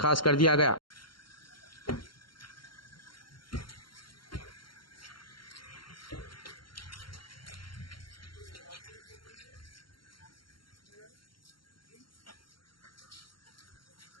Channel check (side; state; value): right; late; 0.73 ms